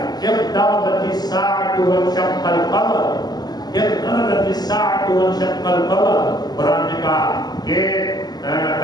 اقتربت الساعۃ وانشق القمر، اقتربت الساعۃ وانشق القمر. قرآن نے کہا کہ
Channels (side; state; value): right; late; 0.20 ms